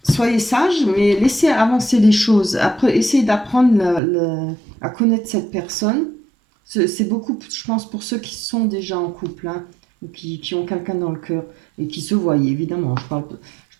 Soyez sage, mais laissez avancer les choses. Après, essayez d'apprendre à connaître cette personne. C'est beaucoup, je pense, pour ceux qui sont déjà en couple, hein, ou qui ont quelqu'un dans le cœur et qui se voient, évidemment. Je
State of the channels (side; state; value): left; drops out; at 4.0 s